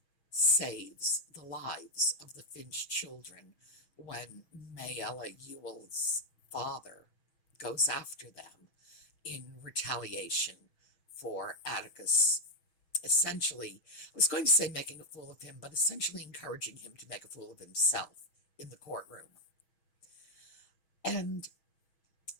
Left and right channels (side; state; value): right; late; 6.3 ms